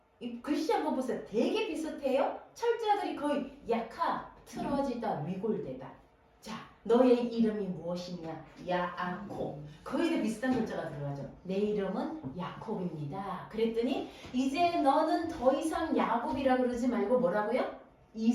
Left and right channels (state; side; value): identical; both; correlation 1.00